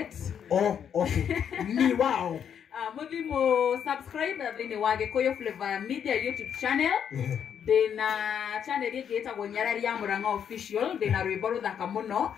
Okay. Ni wao. Mũthimũ subscribe thĩinĩ wa Gĩkũyũ Flavor Media YouTube channel. Ndĩna channel ĩngĩ ĩtagwo Nyarari ya Mũrang'a Official. Ndĩna rwĩmbo rũthaka mũno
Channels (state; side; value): quieter; right; 8.3 dB